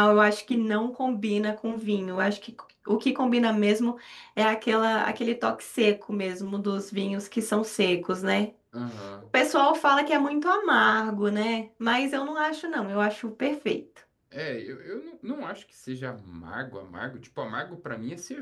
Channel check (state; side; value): identical; both; correlation 1.00